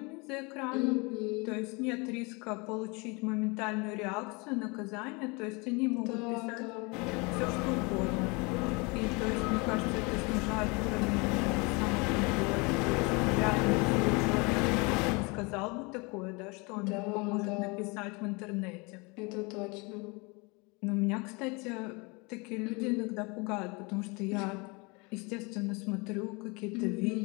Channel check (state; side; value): quieter; right; 28.6 dB